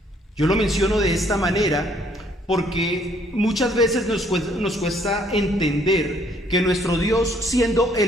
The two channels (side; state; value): both; normal; correlation 0.65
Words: Yo lo menciono de esta manera porque muchas veces nos cuesta entender que nuestro Dios, siendo